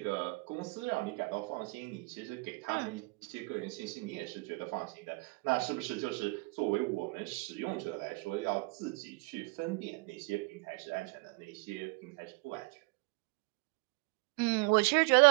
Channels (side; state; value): left; quieter; 26.9 dB